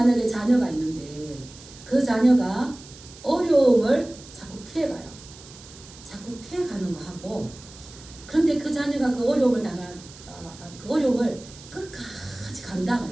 자녀가 있는데 그 자녀가 어려움을 자꾸 피해가요. 자꾸 피해가는 거 하고, 그런데 그 자녀가 그 어려움을 그 어려움을 끝까지 감당을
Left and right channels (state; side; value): noise; right; hiss, 19 dB below the sound